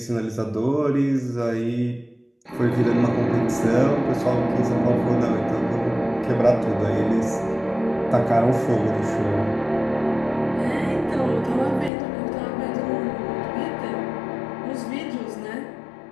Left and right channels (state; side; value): drops out; right; at 11.9 s